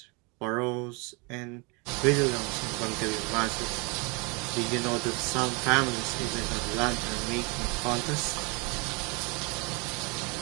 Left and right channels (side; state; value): left; quieter; 30.3 dB